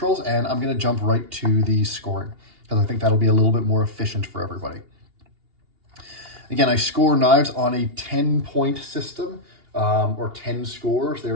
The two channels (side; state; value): left; late; 2.8 ms